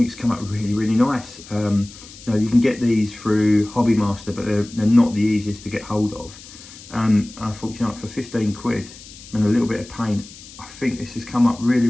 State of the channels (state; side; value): noise; left; hiss, 18 dB below the sound